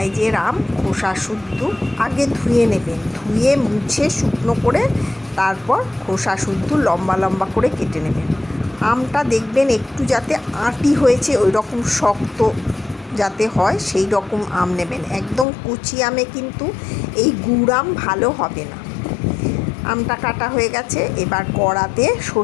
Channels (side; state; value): right; drops out; at 15.5 s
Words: আম খোসা শুদ্ধ আগে ধুয়ে নেবেন, ধুয়ে মুছে শুকনো করে তারপর খোসা শুদ্ধ লম্বা লম্বা করে কেটে নেবেন। আমটা দেখবেন একটু যাতে আঁটি হয়েছে, ওই রকম শক্ত যাতে হয় সেই রকম আম নেবেন। একদম কুচি আমে কিন্তু এই গুড় আম ভালো হবে না। আমটা কাটা হয়ে গেছে। এবার কড়াতে